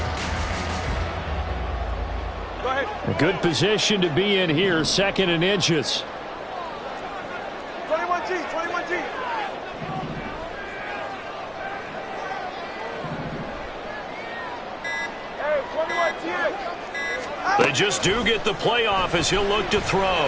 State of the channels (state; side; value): identical; both; correlation 1.00